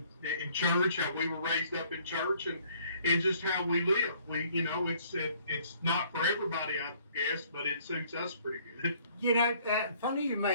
church, how we were raised up in church, and just how we live. It's not for everybody, I guess, but it suits us pretty good. You know, funny you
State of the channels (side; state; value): both; inverted; correlation -0.60